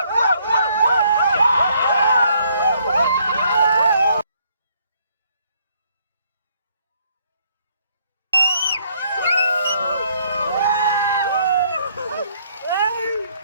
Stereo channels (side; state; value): both; inverted; correlation -0.68